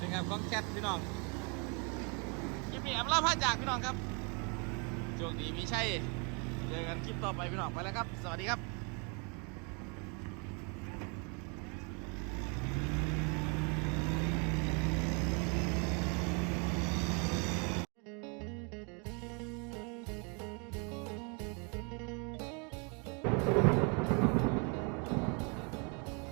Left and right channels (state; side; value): quieter; left; 34.3 dB